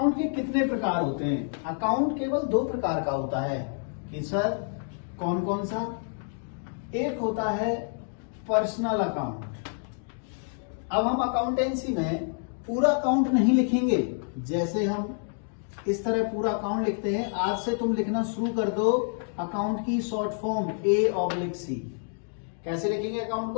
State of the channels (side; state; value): right; silent; 58 dB below the other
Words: के कितने प्रकार होते हैं, अकाउंट केवल 2 प्रकार का होता है कि सर कौन कौन सा। एक होता है पर्सनल अकाउंट। अब हम अकाउंटेंसी में पूरा अकाउंट नहीं लिखेंगे, जैसे हम इस तरह पूरा अकाउंट लिखते हैं। आज से तुम लिखना शुरू कर दो अकाउंट की शॉर्ट फॉर्म A/C। कैसे लिखेंगे अकाउंट